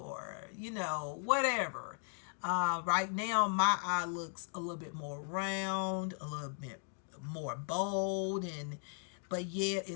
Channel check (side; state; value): right; silent; 53 dB below the other